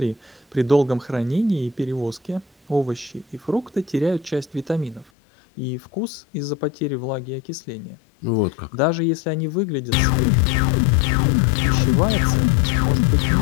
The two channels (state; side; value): drops out; right; at 5.1 s